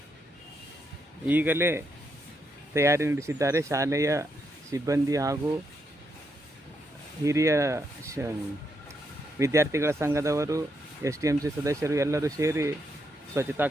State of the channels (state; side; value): normal; both; correlation 0.79